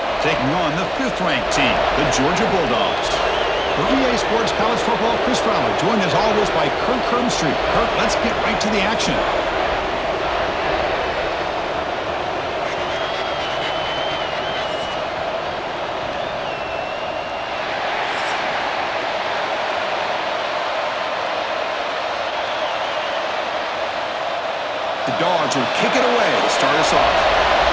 taking on the 5th-ranked team, the Georgia Bulldogs. For EA Sports College Football, Chris Fowler, joined as always by Kirk Hermstreet. Kirk, let's get right to the action. The Dogs will kick it away to start us off.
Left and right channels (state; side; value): identical; both; correlation 1.00